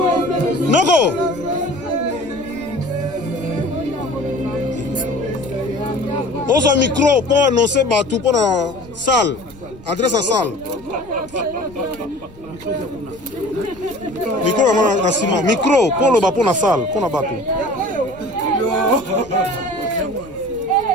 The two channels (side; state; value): left; noise; rumble, 23 dB below the sound